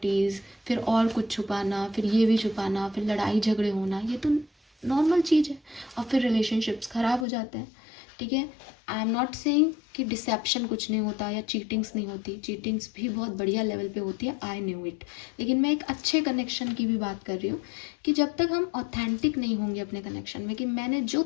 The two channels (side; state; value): right; drops out; at 7.2 s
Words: फिर और कुछ छुपाना, फिर ये भी छुपाना, फिर लड़ाई झगड़े होना, ये तो नॉर्मल चीज़ है. और फिर रिलेशनशिप्स ख़राब हो जाते हैं. ठीक है, आई एम नॉट सेइंग कि डिसेप्शन कुछ नहीं होता या चीटिंग्स नहीं होती, चीटिंग्स भी बहुत बढ़िया लेवल पे होती है, आई न्यू इट. लेकिन मैं एक अच्छे कनेक्शन की भी बात कर रही हूँ कि जब तक हम ऑथेंटिक नहीं होंगे अपने कनेक्शन में, कि मैंने जो